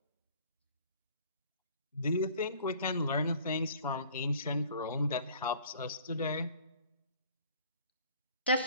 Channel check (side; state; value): both; inverted; correlation -0.52